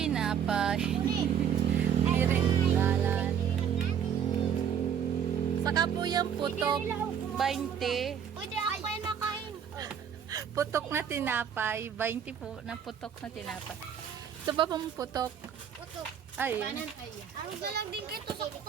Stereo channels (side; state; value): left; quieter; 8.3 dB